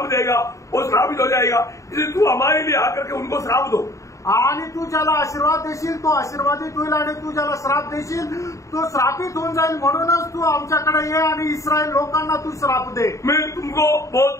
देगा वो श्रापित हो जाएगा, इसलिए तू हमारे लिए आकर के उनको श्राप दो. आणि तू ज्याला आशीर्वाद देशील तो आशीर्वादित होईल आणि तू ज्याला श्राप देशील तो श्रापित होऊन जाईल. म्हणूनच तू आमच्याकडे ये आणि इस्रायल लोकांना तू श्राप दे. मैं तुमको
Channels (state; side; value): late; right; 0.15 ms